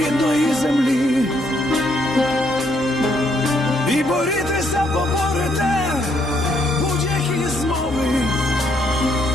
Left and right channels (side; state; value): both; normal; correlation 0.71